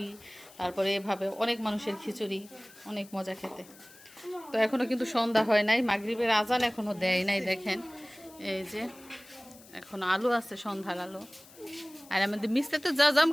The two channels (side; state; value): left; noise; hiss, 22 dB below the sound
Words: তারপরে এভাবে অনেক মানুষের খিচুড়ি, অনেক মজা খেতে। তো এখনো কিন্তু সন্ধ্যা হয় নাই, মাগরিবের আজান এখনো দেয় নাই। দেখেন এই যে এখন আলু আছে, সন্ধ্যার আলু। আর আমাদের মিস্তে তো জাম